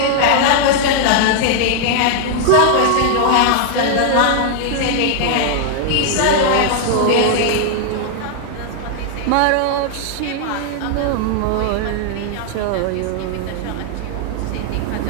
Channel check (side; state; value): both; different; correlation 0.00